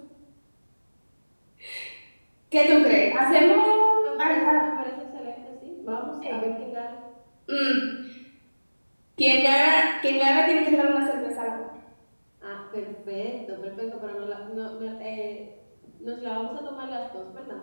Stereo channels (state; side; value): inverted; both; correlation -1.00